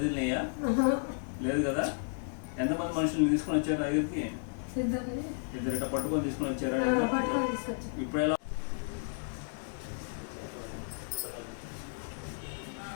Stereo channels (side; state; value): right; silent; digital silence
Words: లేదు కదా. ఎంతమంది మనుషులు తీసుకొని వచ్చారు దగ్గరికి? ఇద్దరు ఇట్లా పట్టుకొని తీసుకొని వచ్చారా? ఇప్పుడు ఎలా?